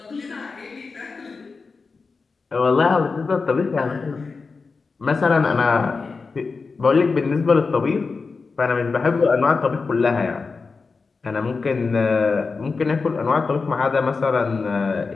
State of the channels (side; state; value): right; quieter; 4.5 dB